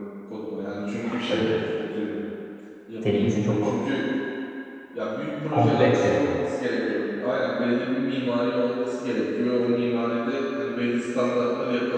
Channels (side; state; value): both; identical; correlation 1.00